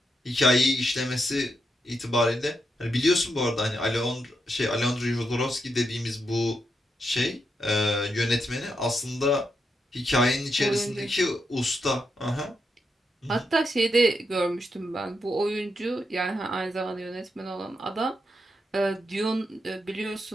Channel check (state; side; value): normal; both; correlation 0.83